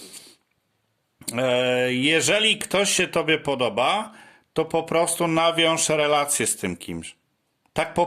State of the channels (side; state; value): both; identical; correlation 1.00